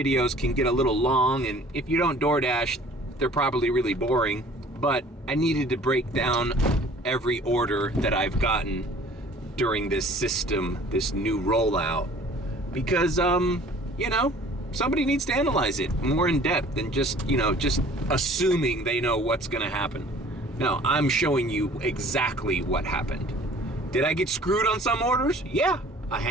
can get a little long, and if you don't DoorDash, they're probably really boring, but I needed to break down every order that I've gotten during this system, this new rollout, because, somebody needs to analyze it more in depth than just assuming they know what's gonna happen. No, I'm showing you exactly what happened. Did I get screwed on some orders? Yeah, a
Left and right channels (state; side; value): normal; both; correlation 0.51